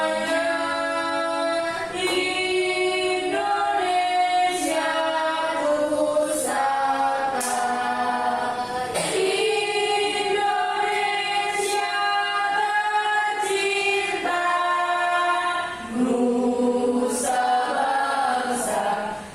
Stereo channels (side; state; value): both; identical; correlation 1.00